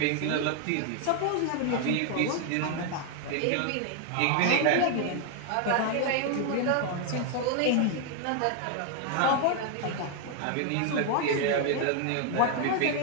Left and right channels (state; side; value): different; both; correlation 0.00